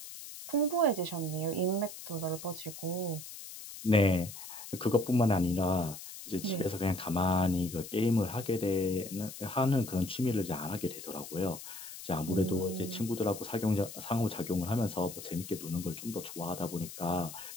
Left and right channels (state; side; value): noise; left; hiss, 12 dB below the sound